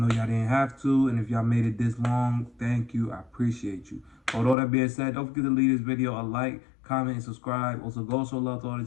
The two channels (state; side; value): drops out; right; at 4.5 s